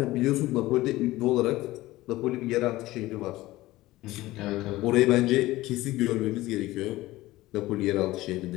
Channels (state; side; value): quieter; right; 17.7 dB